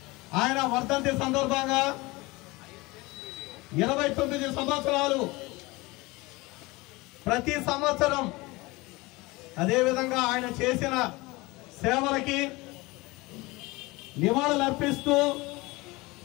ఆయన వర్ధంతి సందర్భంగా 29 సంవత్సరాలు ప్రతి సంవత్సరం అదేవిధంగా ఆయన చేసిన సేవలకి నివాళులర్పిస్తూ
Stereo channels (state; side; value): quieter; right; 22.6 dB